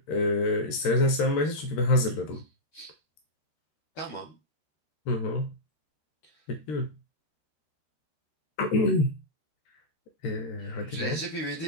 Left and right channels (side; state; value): right; late; 13 ms